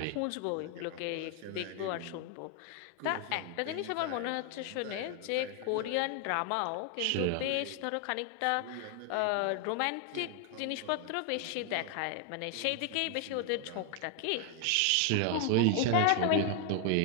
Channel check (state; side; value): different; both; correlation 0.00